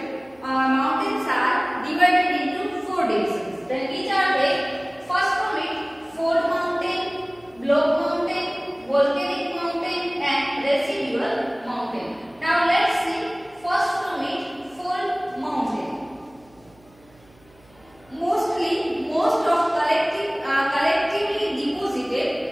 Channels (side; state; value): right; noise; hum, 29 dB below the sound